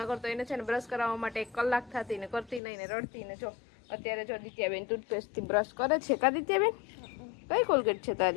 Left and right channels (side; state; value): right; drops out; at 2.6 s